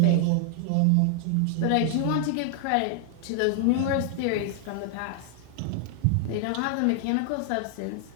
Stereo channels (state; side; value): different; both; correlation 0.00